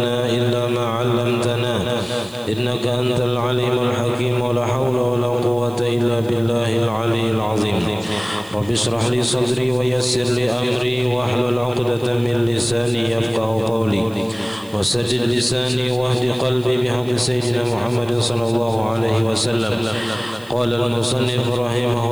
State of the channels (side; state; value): right; noise; hiss, 24 dB below the sound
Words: إلا ما علمتنا إنك أنت العليم الحكيم ولا حول ولا قوة إلا بالله العلي العظيم. رب اشرح لي صدري ويسر لي أمري واحلل عقدة من لساني يفقه قولي وسدد لساني واهد قلبي بحق سيدنا محمد صلى الله عليه وسلم. قال المصنف رحمه